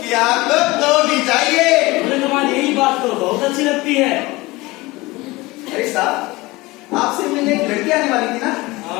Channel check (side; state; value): right; quieter; 21.5 dB